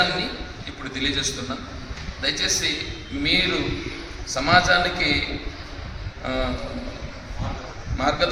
ఇప్పుడు తెలియజేస్తున్నా. దయచేసి మీరు సమాజానికి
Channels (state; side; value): identical; both; correlation 1.00